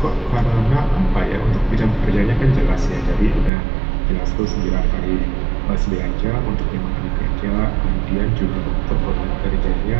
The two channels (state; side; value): drops out; left; at 3.5 s